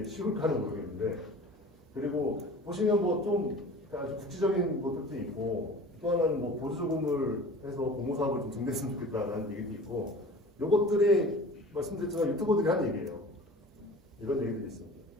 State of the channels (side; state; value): both; normal; correlation 0.41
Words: 쉬울까는 모르겠는데 그리고 보시면 뭐 좀 아주 국지적인 것들도 있고 또 하나는 뭐 보조금을 해서 공모사업을 좀 증대했으면 좋겠다라는 얘기도 있고 요것들이 말씀드렸지만 유튜버들이 한 얘기예요. 이런 얘기들이 있습니다.